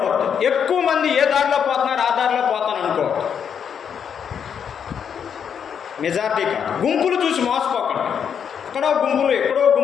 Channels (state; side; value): quieter; right; 7.6 dB